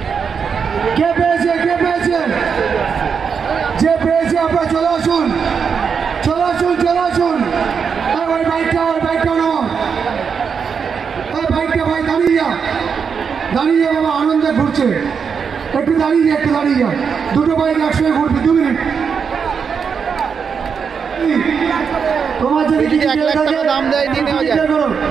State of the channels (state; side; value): quieter; left; 6.3 dB